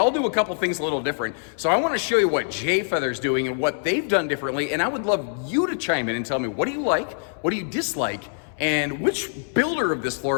do a couple things a little different. So I want to show you what J Feather's doing and what they've done differently, and I would love you to chime in and tell me, what do you like, what do you dislike, and which builder of this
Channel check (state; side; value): silent; right; 62 dB below the other